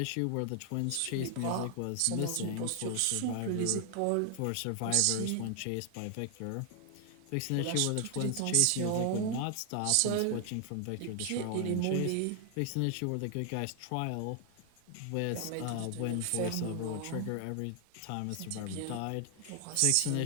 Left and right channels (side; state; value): both; different; correlation 0.00